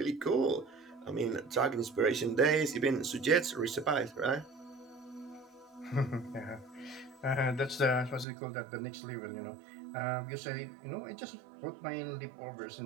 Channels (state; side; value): drops out; left; at 8.2 s